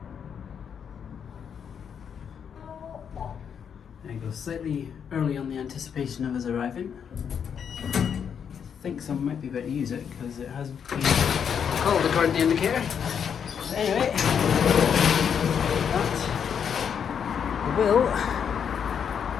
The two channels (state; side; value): quieter; right; 7.6 dB